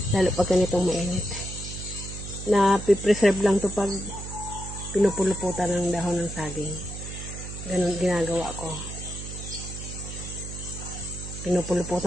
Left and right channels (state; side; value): noise; right; hum, 9 dB below the sound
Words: Lalo pag ganitong mainit. Na pipreserve lang to pag pinupuluputan ng dahon ng saging. Ganun ginagawa ko.